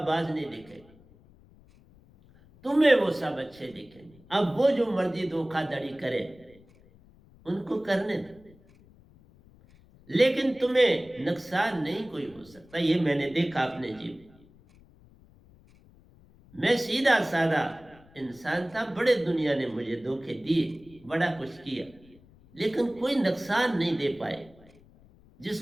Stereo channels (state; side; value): noise; left; rumble, 26 dB below the sound